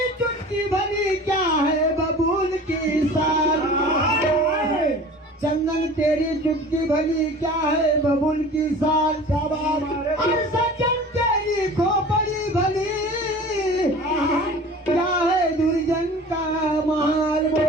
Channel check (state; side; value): normal; both; correlation 0.41